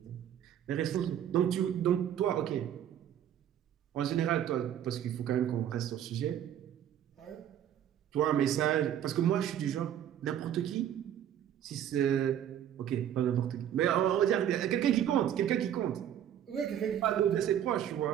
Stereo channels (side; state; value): left; quieter; 10.4 dB